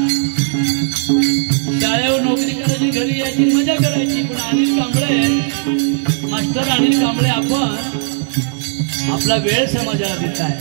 शाळेवर नोकरी करायची घरी यायची मजा करायची पण अनिल कांबळे मास्टर अनिल कांबळे आपण आपला वेळ समाजाला देत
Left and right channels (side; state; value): left; silent; 57 dB below the other